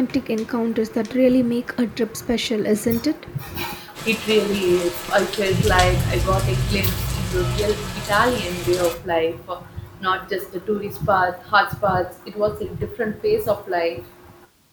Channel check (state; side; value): identical; both; correlation 1.00